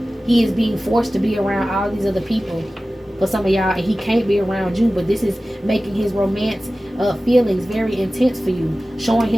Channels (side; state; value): both; normal; correlation 0.96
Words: He is being forced to be around all these other people for some of y'all, and he can't be around you. But this is making his romance feelings very intense for you, showing